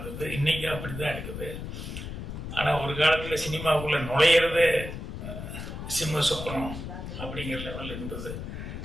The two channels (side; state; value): left; noise; rumble, 7 dB below the sound